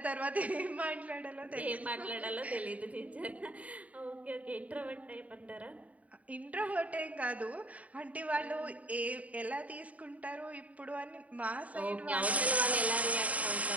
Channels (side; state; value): left; late; 0.069 ms